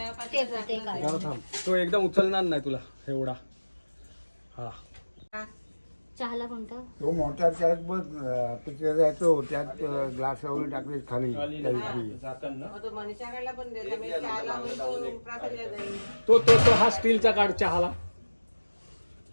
ते काढ. जरा थांब तो एकदम उचलणार नाही तुला एवढा हा चहाला कोणतं तो मोठा त्यात बघ पिक्चर जायचो त्यात ग्लास वगैरे टाकले खाली मनीषाकडला पण देता मी चहाला होईल तो प्रासादला जाईल तो तो तो हा स्टीलचा काढ चहाला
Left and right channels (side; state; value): both; inverted; correlation -1.00